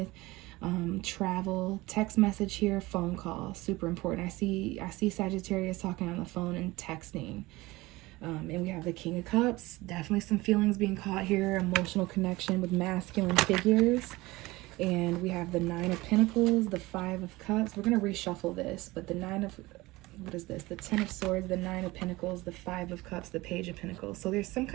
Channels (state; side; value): quieter; left; 20.4 dB